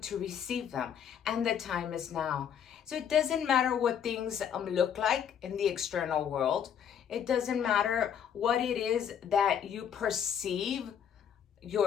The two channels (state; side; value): quieter; right; 8.5 dB